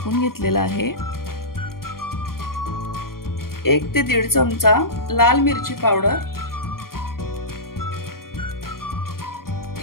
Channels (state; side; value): late; right; 0.92 ms